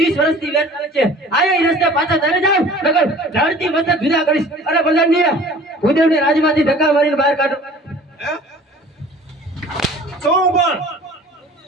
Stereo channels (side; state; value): both; normal; correlation 0.47